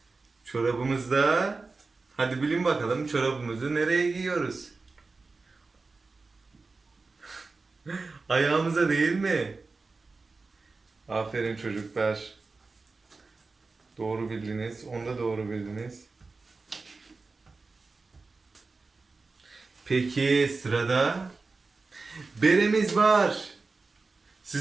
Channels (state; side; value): quieter; left; 3.9 dB